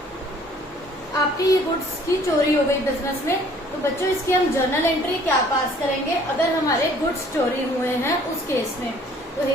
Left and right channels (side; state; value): both; normal; correlation 0.56